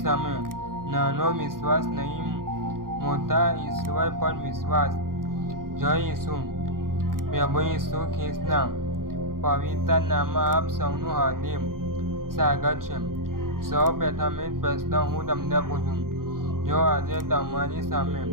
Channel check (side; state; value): left; late; 0.91 ms